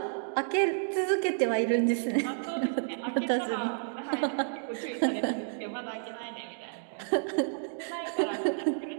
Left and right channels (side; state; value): left; silent; digital silence